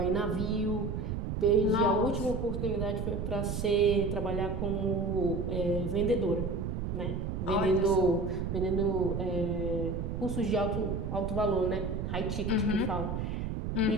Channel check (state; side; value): noise; right; rumble, 3 dB below the sound